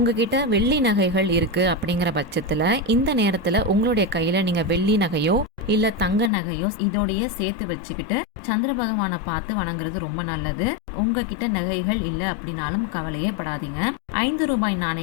வெள்ளி நகைகள் இருக்கு அப்படிங்கிற பட்சத்துல இந்த நேரத்துல உங்களுடைய கையில நீங்க வெள்ளி நகையோ இல்ல தங்க நகையோ இதோடைய சேர்த்து வச்சுக்கிட்டு சந்திர பகவானை பார்த்து வணங்குறது ரொம்ப நல்லது. உங்ககிட்ட நகைகள் இல்ல அப்படின்னாலும் கவலையே படாதீங்க. 5 ரூபாய்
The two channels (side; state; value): right; drops out; at 6.3 s